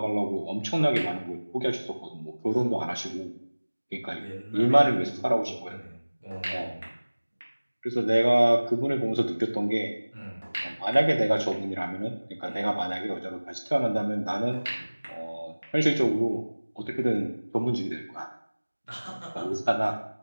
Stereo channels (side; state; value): both; inverted; correlation -1.00